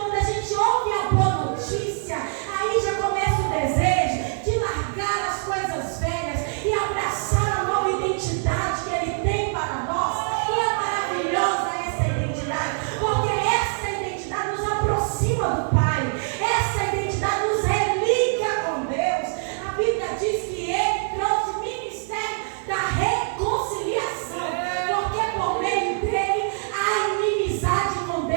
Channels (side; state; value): left; silent; 63 dB below the other